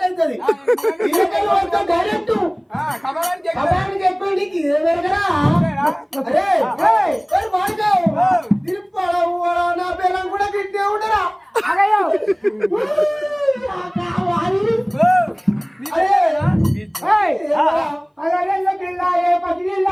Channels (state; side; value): identical; both; correlation 1.00